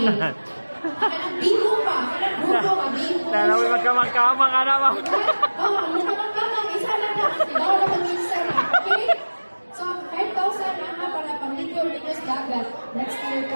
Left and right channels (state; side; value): inverted; both; correlation -1.00